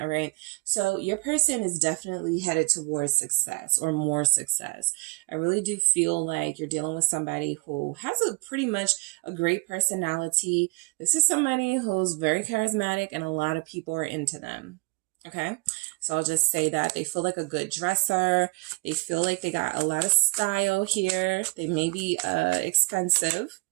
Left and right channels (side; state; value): left; quieter; 28.0 dB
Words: right. So your person is definitely headed towards success or more success. I really do feel like you're dealing with somebody who has a pretty much a great personality. This is somebody who's very charismatic and a lot of people are into them. Okay. So I'll just say that they feel like a good dresser. They feel like they got a lot of style here. They may be expensive.